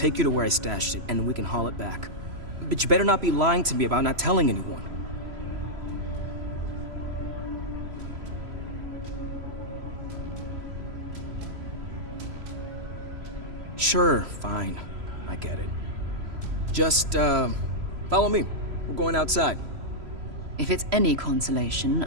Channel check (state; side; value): late; left; 3.0 ms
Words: you to where I stashed it, and we can haul it back. But you better not be lying to me about not telling anyone. Sure, fine. I get it. Just, follow me. We're going outside. If it's any consolation,